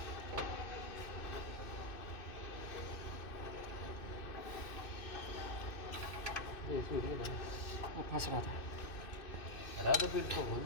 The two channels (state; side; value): late; right; 2.6 ms